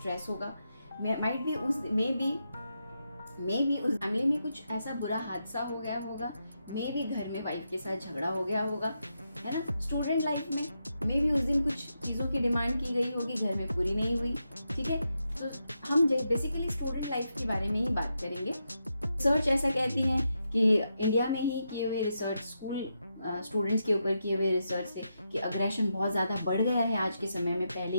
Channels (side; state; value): both; inverted; correlation -0.85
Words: होगा। माइट बी उस फैमिली में कुछ ऐसा बुरा हादसा हो गया होगा। मे भी घर में वाइफ के साथ झगड़ा हो गया होगा, है ना। स्टूडेंट लाइफ में मे भी उस दिन कुछ चीज़ों की डिमांड की गई होगी, घर में पूरी नहीं हुई। ठीक है, तो हम बेसिकली स्टूडेंट लाइफ के बारे में ही बात करेंगे। रिसर्च ऐसा कहती है कि इंडिया में ही किए हुए रिसर्च, स्कूल स्टूडेंट्स के ऊपर किए हुए रिसर्च से कि अग्रेशन बहुत ज़्यादा बढ़ गया है आज के समय में पहले